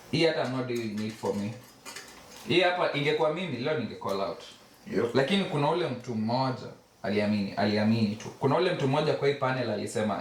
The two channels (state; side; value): identical; both; correlation 1.00